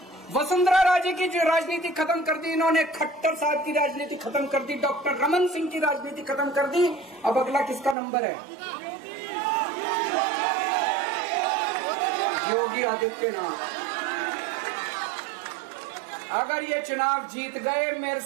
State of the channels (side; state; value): left; drops out; at 8.0 s